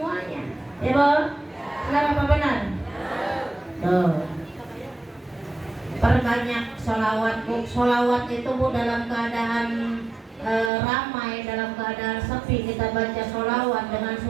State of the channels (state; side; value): drops out; left; at 10.7 s